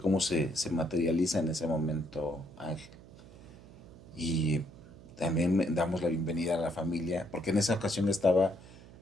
se materializa en ese momento Ángel. Y también damos la bienvenida a la familia, porque en esa ocasión estaba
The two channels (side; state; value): right; noise; hum, 20 dB below the sound